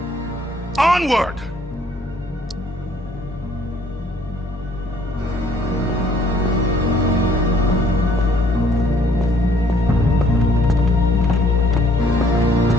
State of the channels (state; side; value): normal; both; correlation 0.62